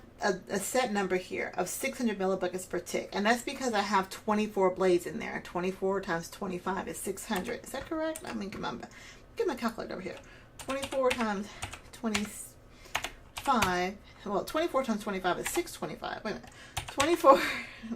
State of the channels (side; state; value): both; identical; correlation 1.00